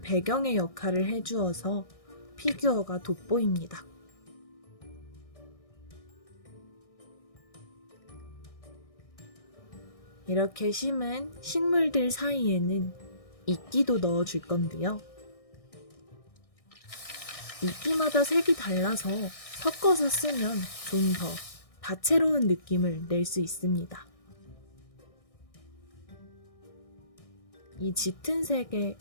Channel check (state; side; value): late; right; 1.6 ms